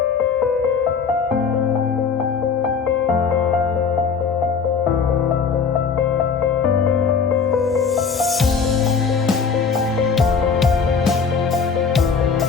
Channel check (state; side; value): quieter; right; 5.8 dB